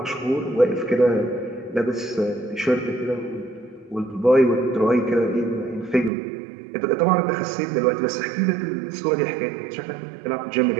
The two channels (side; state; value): left; drops out; at 6.1 s